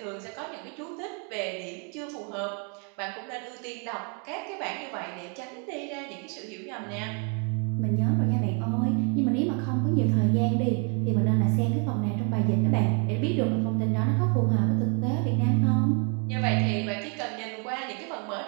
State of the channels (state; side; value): quieter; left; 37.6 dB